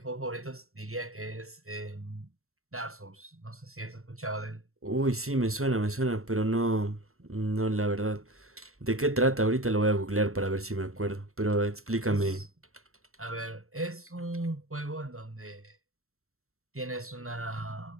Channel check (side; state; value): left; late; 0.63 ms